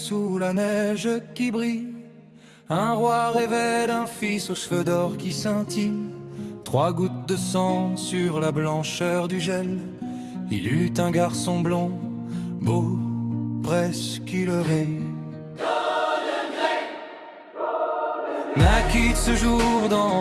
sous la neige qui brille, un roi rêvait d'un fils aux cheveux d'or qui scintillent. 3 gouttes de sang sur la blancheur du gel. Il eut un garçon blond, beau, presque leurré. Naquit ce jour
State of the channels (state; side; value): identical; both; correlation 1.00